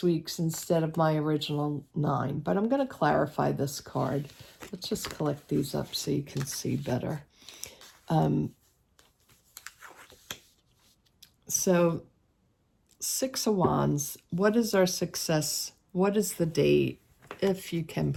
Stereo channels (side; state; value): both; identical; correlation 1.00